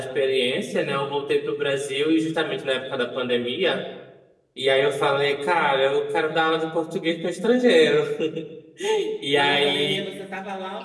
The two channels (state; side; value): identical; both; correlation 1.00